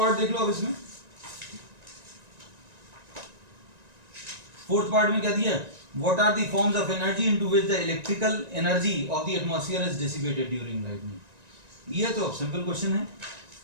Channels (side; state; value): left; late; 1.9 ms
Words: देख लो। अब इसमें फोर्थ पार्ट में क्या दिया है, what are the forms of energy into which the electrical energy of the atmosphere is dissipated during lightning. ये तो अब सिंपल क्वेश्चन है।